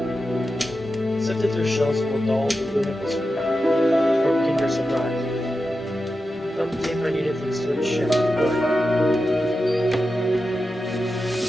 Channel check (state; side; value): normal; both; correlation 0.91